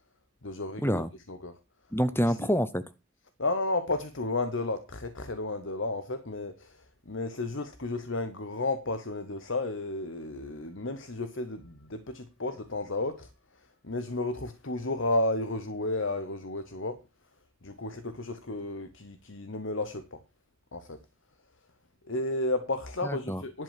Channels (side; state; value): both; normal; correlation -0.05